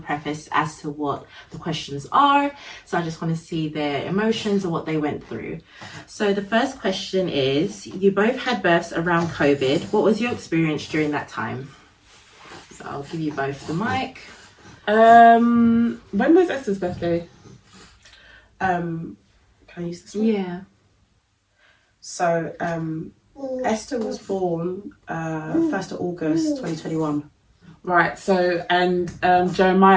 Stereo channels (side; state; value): both; identical; correlation 1.00